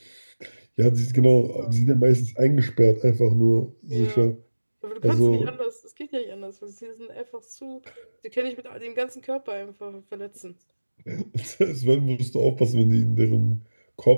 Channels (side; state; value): both; inverted; correlation -1.00